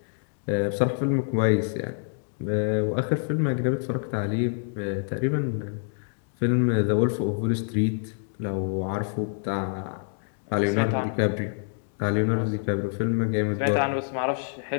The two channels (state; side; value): silent; right; digital silence